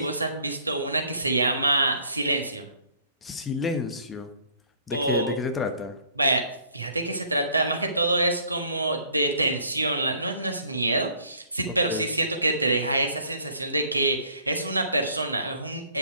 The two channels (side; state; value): both; inverted; correlation -0.58